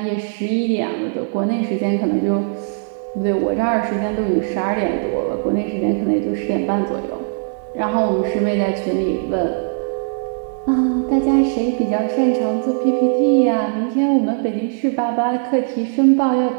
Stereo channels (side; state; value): left; silent; digital silence